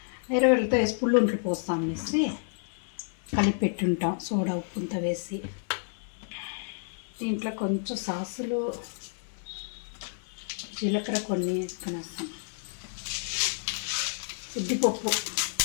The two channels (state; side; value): silent; right; 58 dB below the other